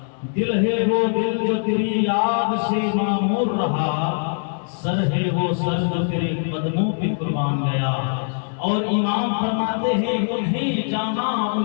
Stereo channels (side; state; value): right; silent; digital silence